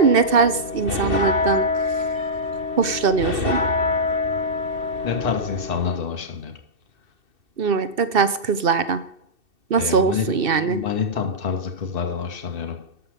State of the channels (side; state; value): left; late; 2.7 ms